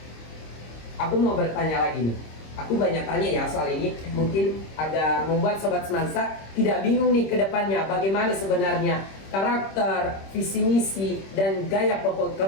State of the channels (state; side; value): late; right; 26 ms